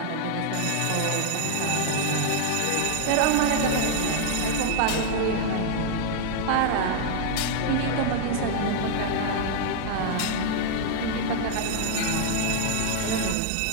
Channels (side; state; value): both; different; correlation 0.00